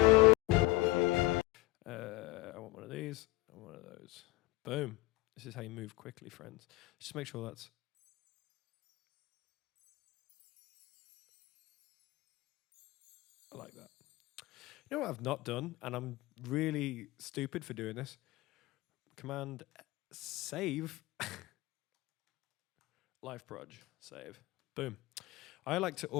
want one of these and one of those. Boom. This is how you move quickly, friends. Just make sure that's... I like that. You know what I've not done, and I'm really stupid for doing this? Command save. Live proj, save. Boom. I like to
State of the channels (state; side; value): quieter; right; 19.7 dB